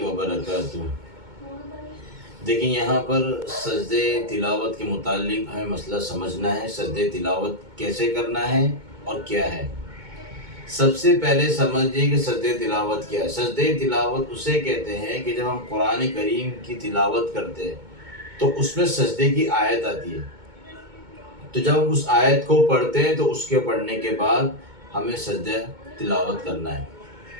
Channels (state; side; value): late; left; 2.2 ms